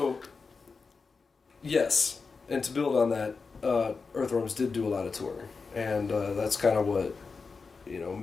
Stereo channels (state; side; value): quieter; right; 4.7 dB